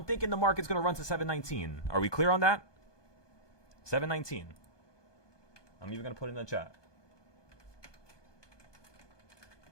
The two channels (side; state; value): right; late; 1.2 ms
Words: thinking the market's going to run to 719. Are we clear on that? 719. I'm even going to put it in the chat.